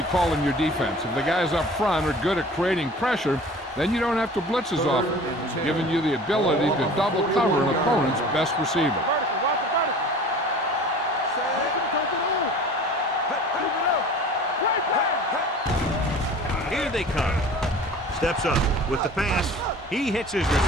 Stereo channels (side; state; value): both; normal; correlation 0.43